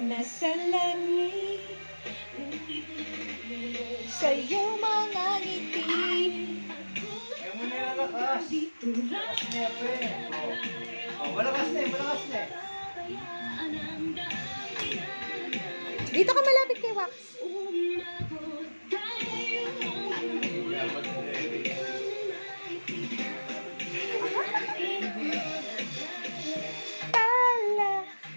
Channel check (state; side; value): inverted; both; correlation -1.00